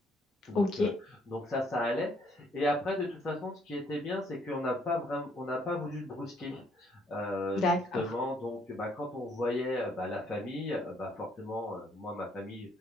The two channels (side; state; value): both; normal; correlation 0.67